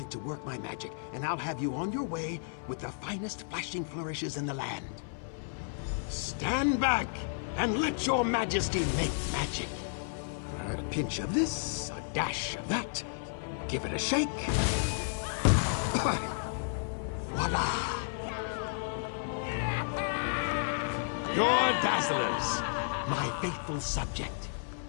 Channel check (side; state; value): right; silent; 56 dB below the other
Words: to work my magic, and I'll have you on your way with the finest flashing flourishes in the land. Stand back, and let your majesty make magic. A pinch of this, a dash of that. Give it a shake. Voila! Your dazzlers, my faithful subject.